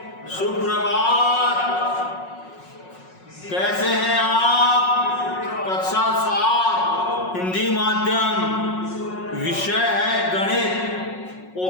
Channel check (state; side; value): late; right; 5.5 ms